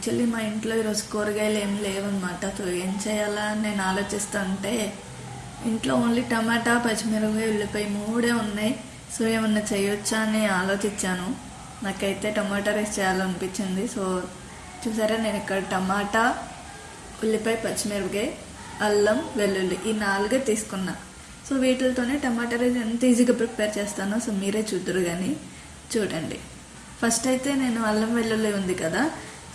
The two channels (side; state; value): both; identical; correlation 1.00